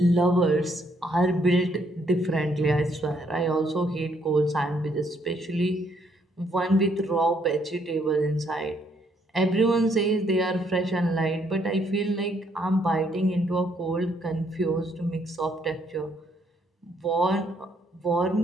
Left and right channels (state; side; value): normal; both; correlation 0.70